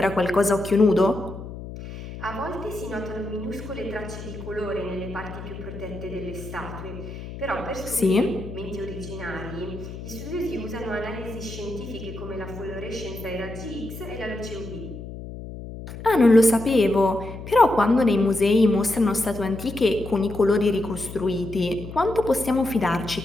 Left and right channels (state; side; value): noise; left; hum, 11 dB below the sound